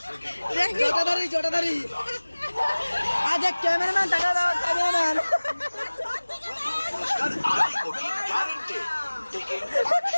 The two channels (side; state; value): both; inverted; correlation -1.00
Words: দেখি জটাদারি জটাদারি আজ এক ক্যামেরাম্যান টাকা দাও ক্যামেরাম্যান